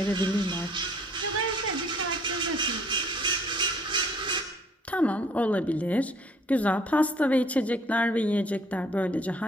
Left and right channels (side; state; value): both; normal; correlation 0.59